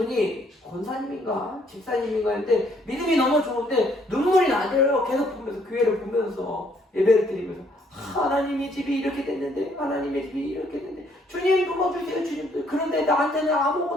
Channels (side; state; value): both; normal; correlation 0.66